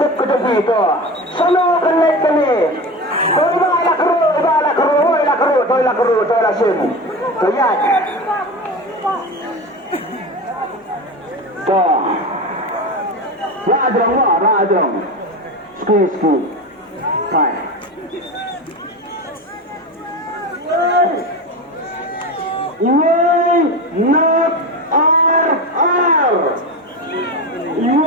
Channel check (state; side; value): normal; both; correlation 0.25